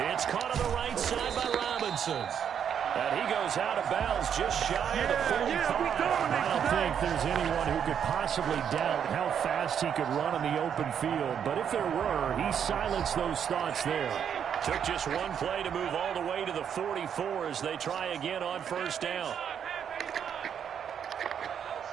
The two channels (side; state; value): left; quieter; 8.2 dB